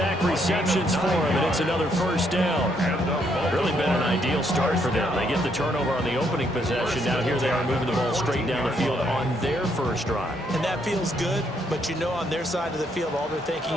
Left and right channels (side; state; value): both; normal; correlation 0.73